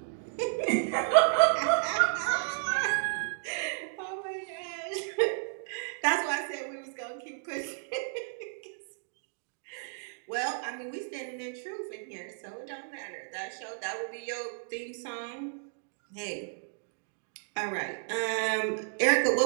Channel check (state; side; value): silent; left; digital silence